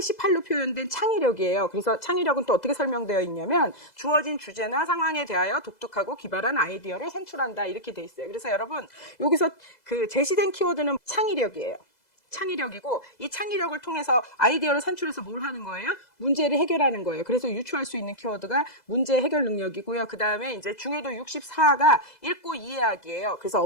표현된 창의력이에요. 그래서 창의력은 또 어떻게 설명되어 있냐면 주어진 주제나 상황에 대하여 독특하고 기발한 아이디어를 산출한다 이렇게 돼 있어요. 그래서 여러분 여기서 그 제시된 키워드는 창의력이에요. 창의력이고 이 창의력을 통해서 아이디어를 산출해서 뭘 하는 거예요? 문제를 해결하는 거예요. 그래서 유추할 수 있는 키워드가 문제 해결 능력이고요. 그 다음에 이제 중요도 64가 읽고 이해하기예요. 그래서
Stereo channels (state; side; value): late; right; 2.0 ms